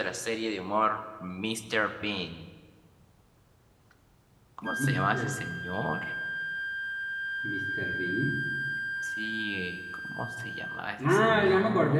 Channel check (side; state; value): both; identical; correlation 1.00